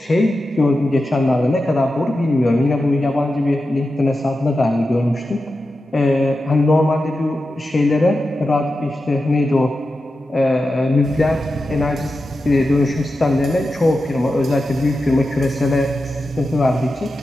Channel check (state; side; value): normal; both; correlation 0.91